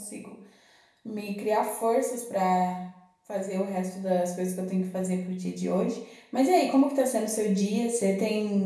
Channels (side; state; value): both; identical; correlation 1.00